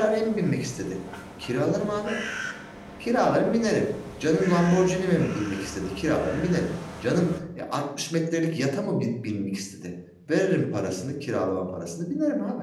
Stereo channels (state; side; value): identical; both; correlation 1.00